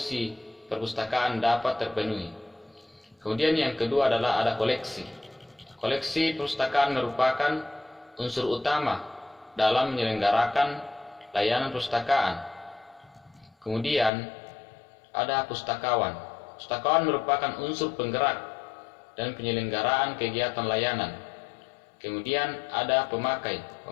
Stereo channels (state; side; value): drops out; right; at 14.1 s